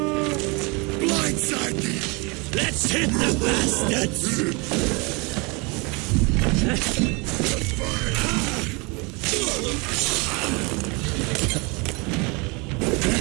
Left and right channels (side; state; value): left; quieter; 28.8 dB